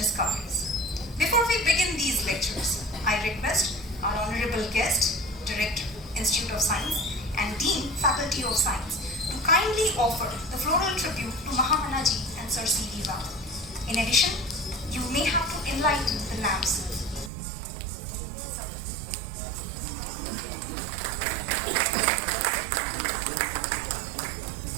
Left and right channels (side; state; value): left; drops out; at 17.3 s